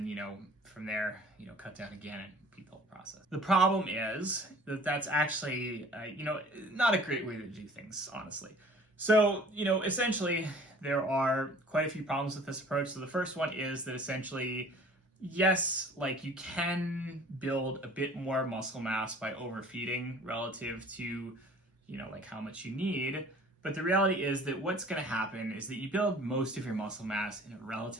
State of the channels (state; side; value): normal; both; correlation 0.49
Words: from there, cut down again and repeat the whole process. The problem is that that's actually, not a great way to do things, honestly. So, essentially, there are quite a few problems with this approach. So the first one is that essentially, yes, you can build a bit more muscle mass by overfeeding relative to, how much you need. But the reality is that what's going to happen is that you build most of your muscle mass in a